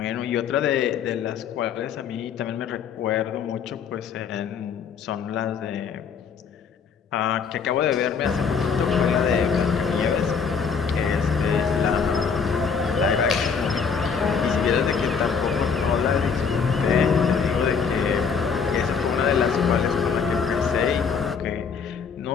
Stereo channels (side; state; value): right; quieter; 6.1 dB